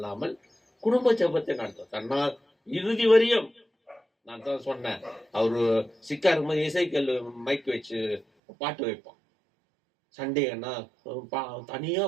குடும்ப ஜெபத்தை நடத்தும். தன்னால் இறுதி வரையும் நான் தான் சொன்னேன், அவரு சிக்கா இருக்கும்போது இசைக்கல் மைக் வச்சு பாட்டு வைப்பான். சண்டேன்னா தனியா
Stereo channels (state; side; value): drops out; left; at 8.2 s